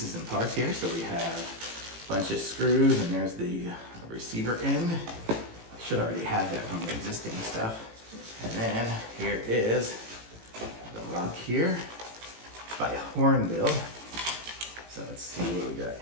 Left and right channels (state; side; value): late; left; 18 ms